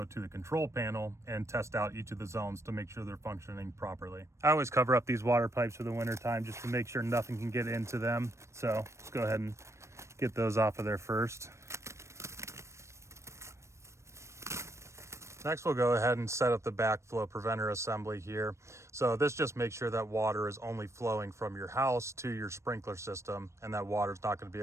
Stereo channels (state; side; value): late; left; 0.13 ms